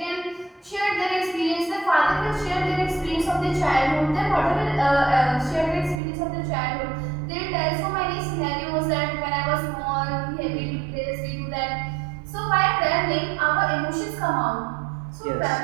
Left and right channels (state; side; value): drops out; left; at 6.0 s